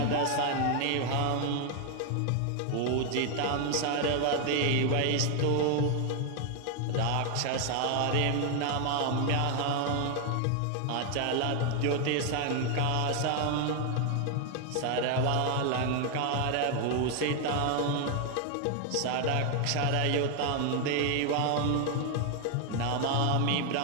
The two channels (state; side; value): different; both; correlation 0.00